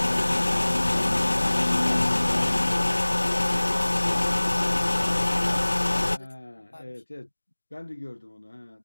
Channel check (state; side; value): inverted; both; correlation -1.00